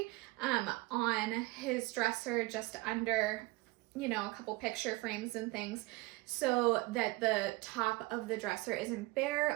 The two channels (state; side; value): quieter; left; 22.2 dB